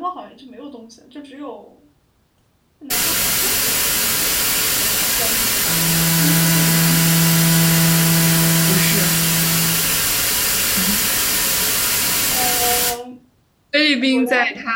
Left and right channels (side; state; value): both; identical; correlation 1.00